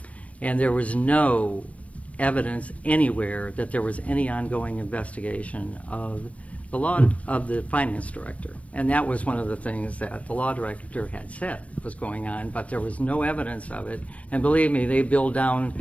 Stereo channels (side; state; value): right; late; 0.065 ms